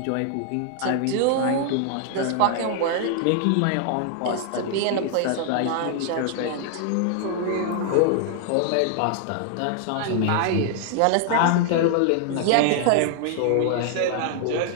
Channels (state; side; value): different; both; correlation 0.00